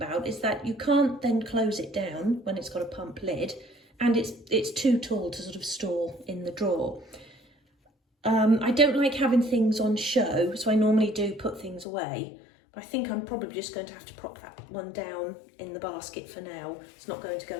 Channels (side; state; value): right; drops out; at 11.9 s